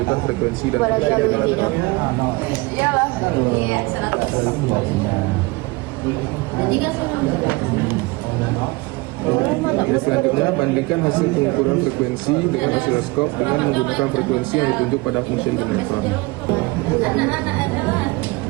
frekuensi dan fungsi generator. Selanjutnya, bandingkan hasil pengukuran frekuensi dengan osiloskop dengan menggunakan frekuensi yang ditunjuk pada function generator.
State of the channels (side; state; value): left; quieter; 24.1 dB